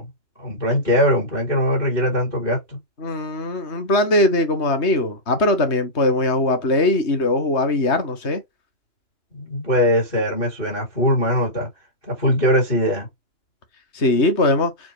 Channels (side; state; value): right; late; 3.2 ms